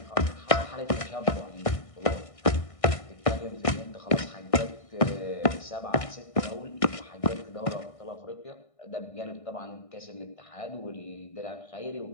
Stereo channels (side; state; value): right; late; 1.6 ms